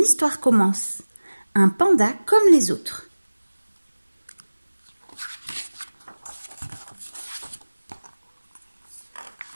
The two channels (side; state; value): both; inverted; correlation -1.00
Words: commence. Un panda comme les autres.